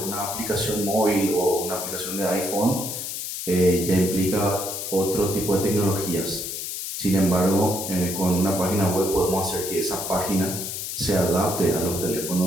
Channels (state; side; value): noise; left; hiss, 5 dB below the sound